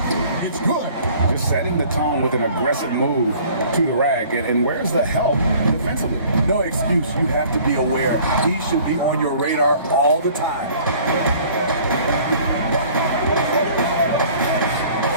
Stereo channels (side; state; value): both; inverted; correlation -0.52